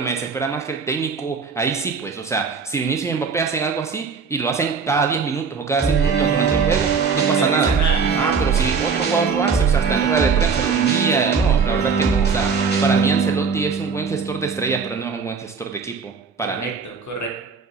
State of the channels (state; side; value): quieter; left; 5.4 dB